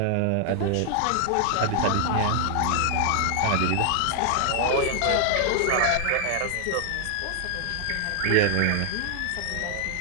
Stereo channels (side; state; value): both; different; correlation 0.00